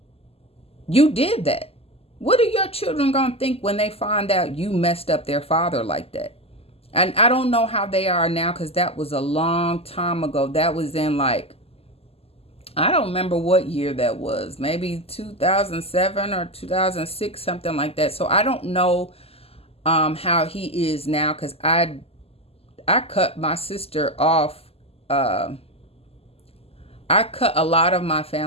you did that. What are your children going to think when they find out you messed up their father like that? And I don't know how they are now, because that was a long time ago. That was in I don't remember what year that was. Maybe 2007 or 2006, something like that. So I don't know how he is now, because I cut my sister off. I cut a lot of my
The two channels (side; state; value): right; late; 0.29 ms